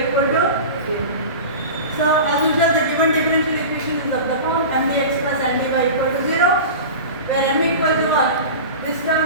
equal to 0. So as usual the given differential equation is of the form mdx plus ndy equal to 0 where m equal to 1 this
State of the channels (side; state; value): both; inverted; correlation -0.32